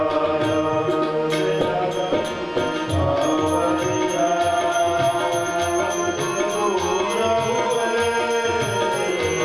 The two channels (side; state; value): both; identical; correlation 1.00